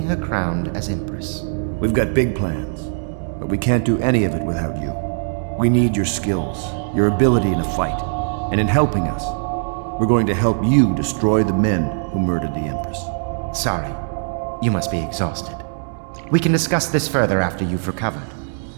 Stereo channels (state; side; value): silent; left; digital silence